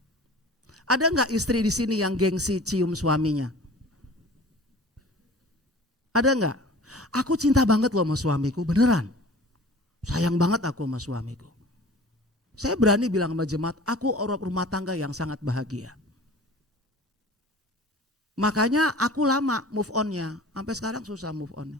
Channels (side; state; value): both; normal; correlation 0.43